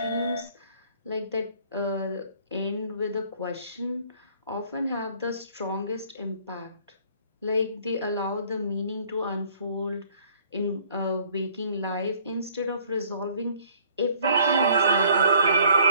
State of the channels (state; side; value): inverted; both; correlation -0.58